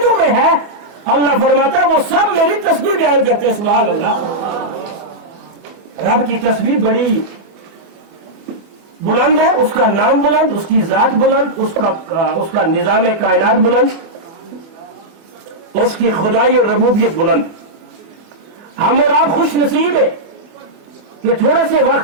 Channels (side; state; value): left; late; 24 ms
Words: में है, अल्लाह फरमाता है वो सब मेरी तस्बीह बयान करते हैं। सुभान अल्लाह। रब की तस्बीह बड़ी बुलंद है, उसका नाम बुलंद, उसकी जात बुलंद, उसका निजाम कायनात बुलंद, उसकी खुदाई और रबूबियत बुलंद। हम और आप खुश नसीब है कि थोड़े से